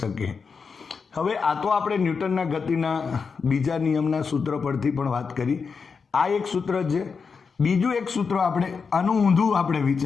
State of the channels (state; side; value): quieter; right; 5.4 dB